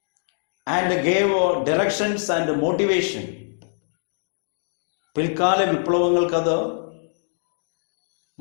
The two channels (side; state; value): right; silent; digital silence